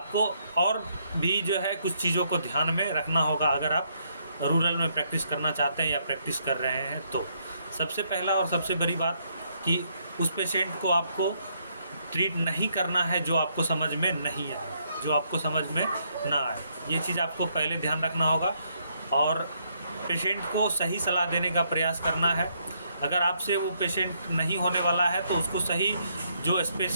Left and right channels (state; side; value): inverted; both; correlation -0.73